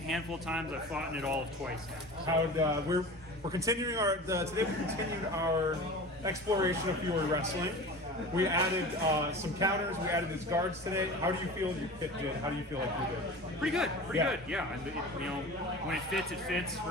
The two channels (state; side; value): normal; both; correlation 0.35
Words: handful of times. I've fought in it all of twice now. We're continuing our today. We continued our exploration of Fiore wrestling. We added some counters. We added these guards today. How do you feel your kit did? How do you feel like you did? Pretty good. Good. Yeah. And when it fits,